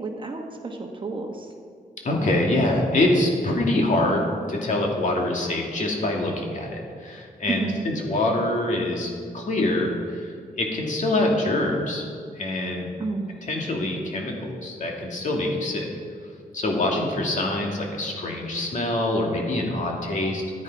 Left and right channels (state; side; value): normal; both; correlation 0.55